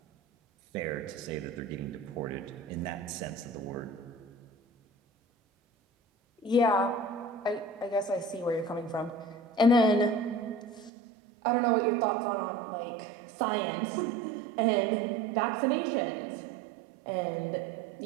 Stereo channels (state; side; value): drops out; left; at 10.9 s